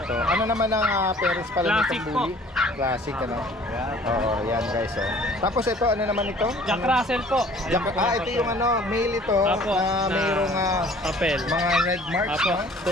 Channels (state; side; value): normal; both; correlation 0.52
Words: Ano naman ang parents pala Classic nitong po. bully? Classic ano. Oo, yan guys oh. Tapos ito ano naman ito? Jack Russell po. Ayan po, Ito yung ano, male ito Apo, na mayroong papel. mga red marks Apo,